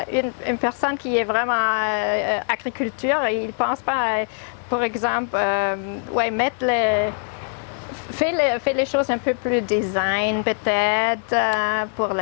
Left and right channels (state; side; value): silent; right; 64 dB below the other